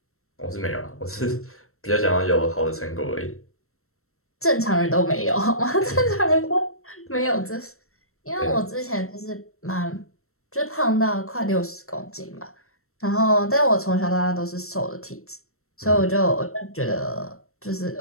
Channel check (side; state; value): right; late; 0.63 ms